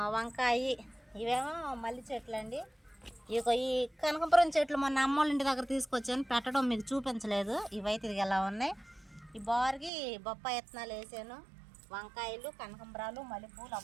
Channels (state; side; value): drops out; left; at 9.9 s